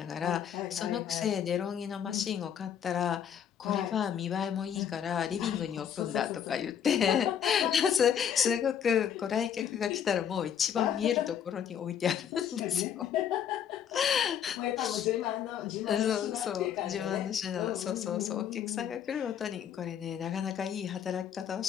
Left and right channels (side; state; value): right; quieter; 8.8 dB